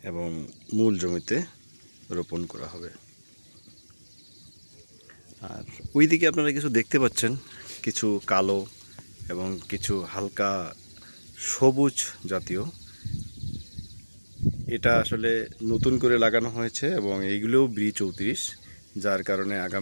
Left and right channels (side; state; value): both; inverted; correlation -1.00